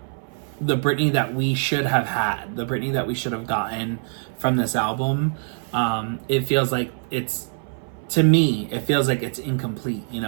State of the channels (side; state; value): left; silent; 58 dB below the other